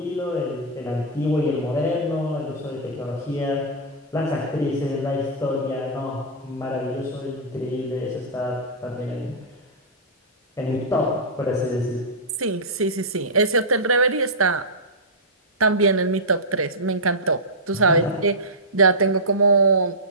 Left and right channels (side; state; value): both; normal; correlation -0.12